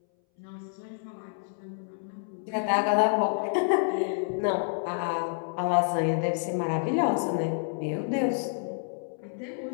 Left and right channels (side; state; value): right; silent; 59 dB below the other